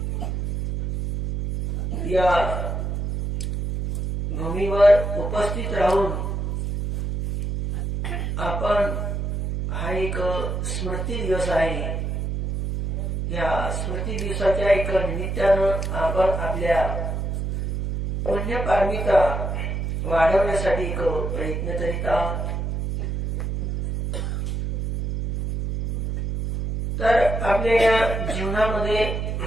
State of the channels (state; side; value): noise; right; hum, 2 dB below the sound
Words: या भूमीवर उपस्थित राहून आपण हा एक स्मृती दिवस आहे. या स्मृती दिवसाच्या एक निमित्तानं आपण आपल्या पुण्यपारमिता वाढवण्यासाठी एक प्रयत्न करीत आहोत. तर आपल्या या जीवनामध्ये